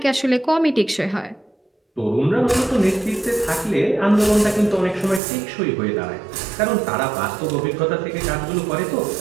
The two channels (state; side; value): drops out; left; at 5.2 s